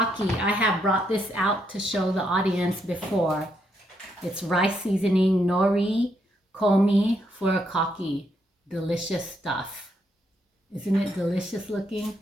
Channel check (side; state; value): both; normal; correlation 0.77